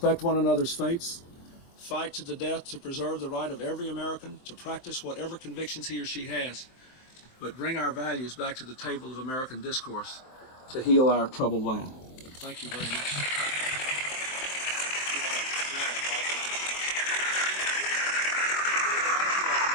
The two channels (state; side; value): late; right; 23 ms